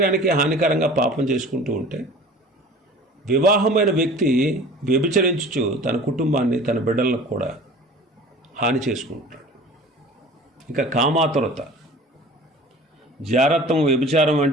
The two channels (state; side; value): normal; both; correlation 0.43